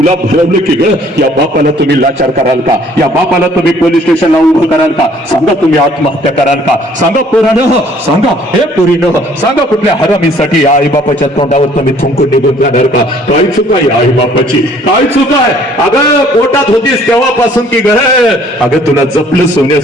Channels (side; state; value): both; normal; correlation 0.58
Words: भरवलं की ग? या बापाला तुम्ही लाचार कराल का? या बापाला तुम्ही पोलीस स्टेशनला उभं कराल का? सांगा, तुम्ही आत्महत्या कराल का? सांगा पोरानं, सांगा. हे पोरीनं सांगा, कुठल्या हरामीसाठी या आई बापाच्या तोंडावर तुम्ही थुंकून निघून जाणार का? काय चुका या आई बापाची? काय चुका आहे? अगं पोटात होतीस तेव्हापासून की ग? अगं तुला जपलं